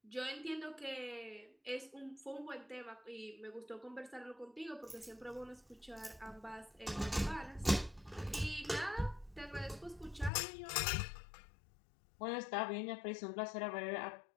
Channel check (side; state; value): right; drops out; at 10.3 s